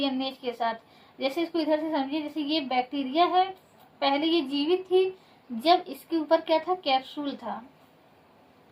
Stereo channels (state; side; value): identical; both; correlation 1.00